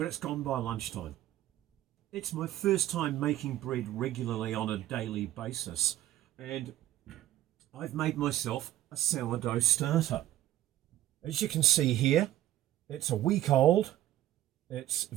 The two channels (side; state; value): left; quieter; 13.7 dB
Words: it's gone by lunchtime. It's my first time making bread regularly on a daily basis, and I've made myself a sourdough starter. As you can see here, it's a week old. It's